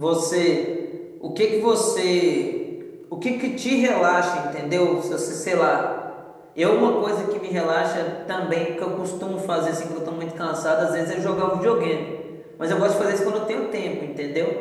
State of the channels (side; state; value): both; identical; correlation 1.00